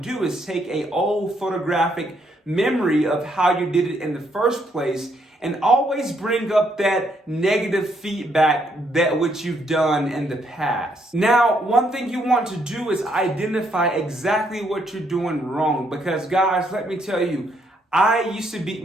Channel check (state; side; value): normal; both; correlation 0.73